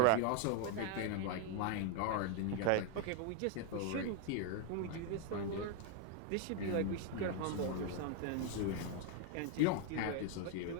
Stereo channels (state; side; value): different; both; correlation 0.01